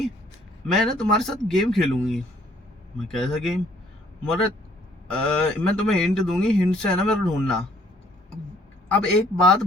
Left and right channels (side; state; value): both; normal; correlation 0.62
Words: मैं ना तुम्हारे साथ गेम खेलूंगी। मैं कैसा गेम, बोले मैं तुम्हें हिंट दूंगी, हिंट से है ना मेरे को ढूंढना। अब एक बात